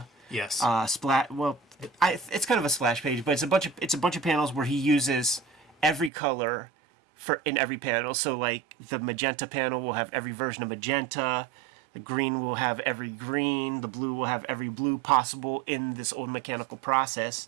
Yes. It's kind of a splash page, but it's a bunch of panels where he uses every color in every panel. So like the magenta panel will have every version of magenta. The green will have every green. The blue will have every blue possible in this old mechanical process.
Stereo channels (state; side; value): drops out; left; at 6.1 s